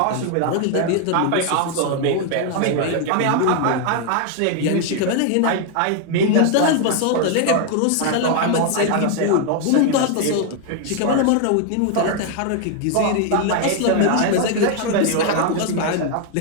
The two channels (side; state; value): both; different; correlation 0.00